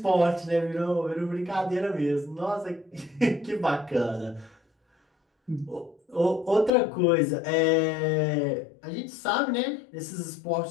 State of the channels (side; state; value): right; drops out; at 6.7 s